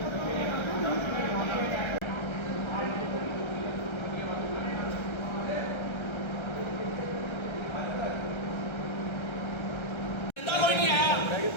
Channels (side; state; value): right; late; 1.3 ms